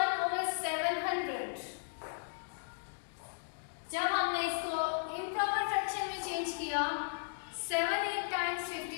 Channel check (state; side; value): silent; right; digital silence